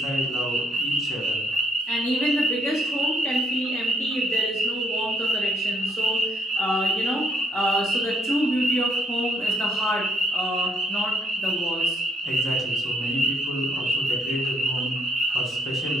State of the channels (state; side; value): normal; both; correlation 0.70